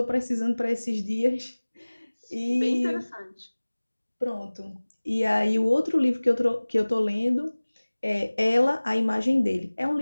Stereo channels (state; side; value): inverted; both; correlation -1.00